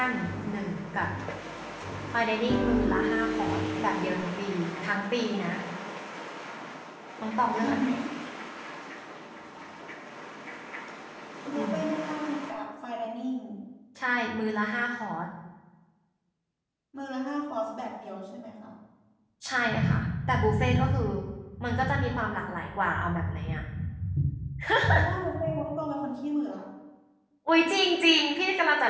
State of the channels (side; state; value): both; identical; correlation 1.00